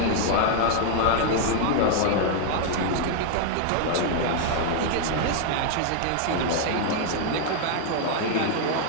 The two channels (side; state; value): both; different; correlation 0.00